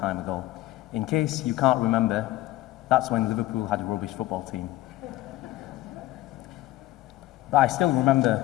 ago. In case you can't remember, that's when Liverpool had a rubbish football team. But I still remember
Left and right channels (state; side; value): quieter; right; 16.4 dB